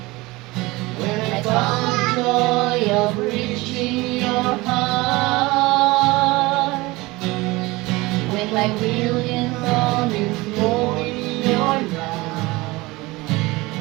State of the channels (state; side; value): quieter; left; 21.7 dB